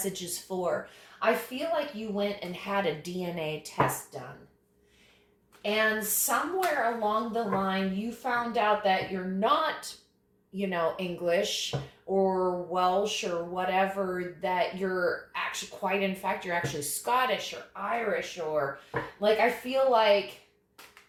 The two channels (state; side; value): identical; both; correlation 1.00